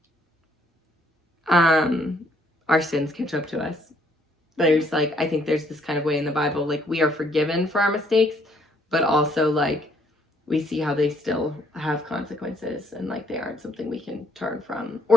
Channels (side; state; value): both; normal; correlation 0.67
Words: Our sins catch up to us. There's like, I think there's this kind of way in the Bible, like we are forgiven for our mistakes, but also like we see how they still have consequences, and like they aren't something we can turn from,